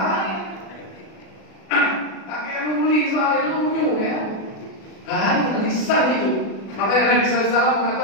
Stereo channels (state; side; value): late; right; 36 ms